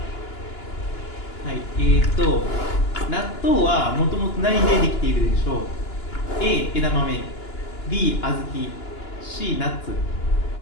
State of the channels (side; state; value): right; late; 2.9 ms